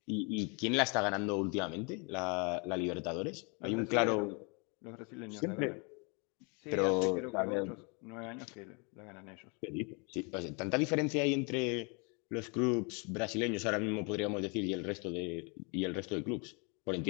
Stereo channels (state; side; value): quieter; right; 33.1 dB